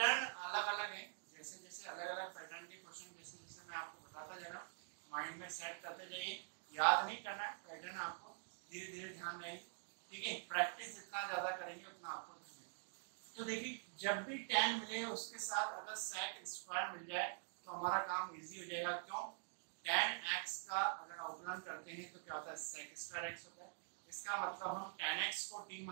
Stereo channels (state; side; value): silent; left; digital silence